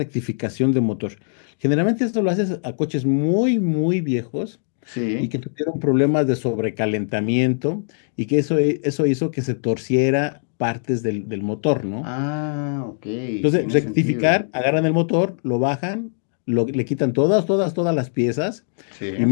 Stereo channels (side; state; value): right; silent; digital silence